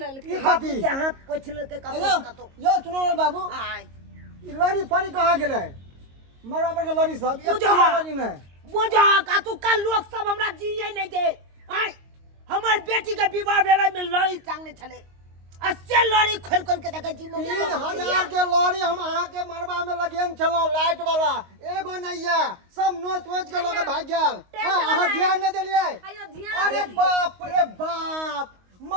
ई बाप कथी? के हाथ पोछले के हेलो का तो यो सुनो बाबू, आय ई लड़ी पड़ी कहां गेलै? मरवा पर के लड़ी सब एक बुझा। लड़ी नहीं बुझा का तू का लोग सब हमरा जिये नहीं दे। आय हमर बेटी के विवाह भेलै में लड़ी टांगने छले, अस्से लड़ी खोल खोल के देखे जी। 3000 के लड़ी हम अहाँ के मरवा में लगेन छलो लाइट वाला, एगो नहीं है, सब नोच नोच के लोग भाग गेल। अहाँ ध्यान नहीं देलिए? अरे बाप रे बाप,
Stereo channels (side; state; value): left; late; 22 ms